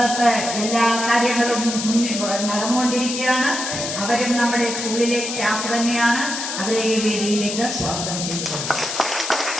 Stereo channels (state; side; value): noise; left; hiss, 4 dB below the sound